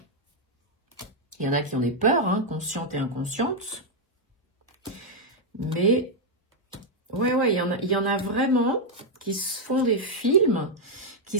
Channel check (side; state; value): both; normal; correlation -0.01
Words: Il y en a qui ont des peurs, hein, conscientes et inconscientes. Mais, ouais, il y en a vraiment qui se font des films, qui